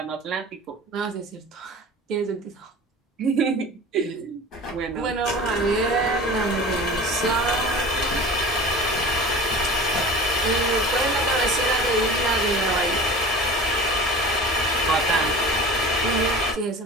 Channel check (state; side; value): normal; both; correlation 0.37